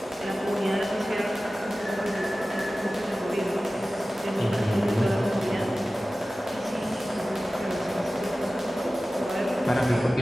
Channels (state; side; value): normal; both; correlation 0.96